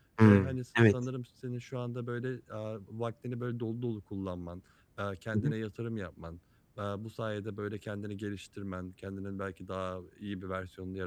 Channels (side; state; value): both; identical; correlation 1.00